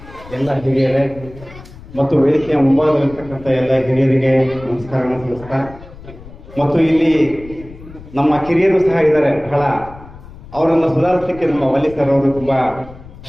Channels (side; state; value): left; noise; rumble, 18 dB below the sound